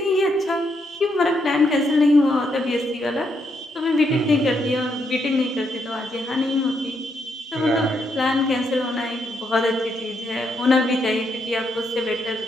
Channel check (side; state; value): both; normal; correlation 0.78